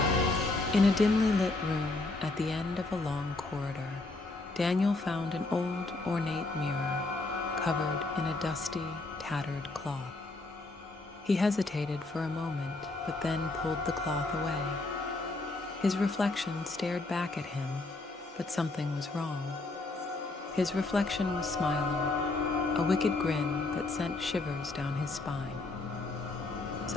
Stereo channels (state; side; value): quieter; right; 3.2 dB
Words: In a dimly lit room at the end of a long corridor, Daniel found an old, ornate mirror covered in a dusty, tattered cloth. He hesitated for a moment, but then pulled the cloth away. His reflection stared back at him, but something was wrong. His reflection was smiling, a wicked grin that sent shivers down his spine.